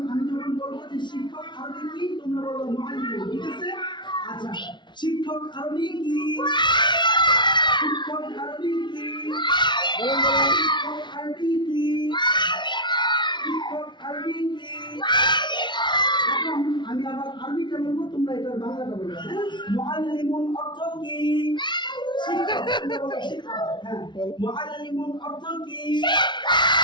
আমি যখন বলবো যে শিক্ষক আরবি কি, তোমরা বলবো মুআল্লিমুন। ঠিক আছে? আচ্ছা, শিক্ষক আরবি কি? শিক্ষক আরবি কি? শিক্ষক আরবি কি? শিক্ষক আরবি কি? এখন আমি আবার আরবিটা বলবো, তোমরা এটার বাংলাটা বলবে। মুআল্লিমুন অর্থ কি? শিক্ষক। তোমরা বলো শিক্ষক। হ্যাঁ, মুআল্লিমুন অর্থ কি?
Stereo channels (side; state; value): right; late; 0.22 ms